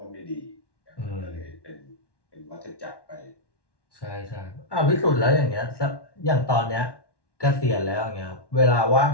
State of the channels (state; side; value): late; right; 1.1 ms